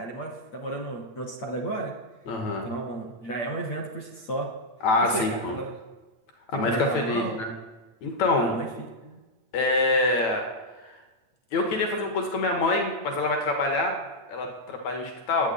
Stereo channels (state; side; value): late; right; 9.0 ms